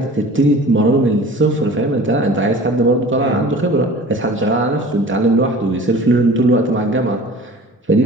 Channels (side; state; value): both; normal; correlation 0.43